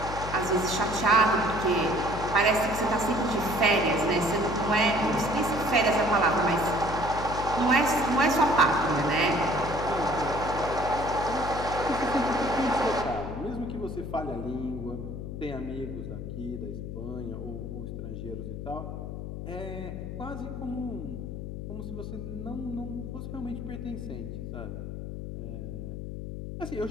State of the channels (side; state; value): left; noise; hum, 7 dB below the sound